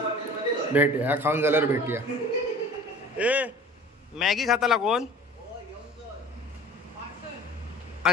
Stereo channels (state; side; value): normal; both; correlation 0.44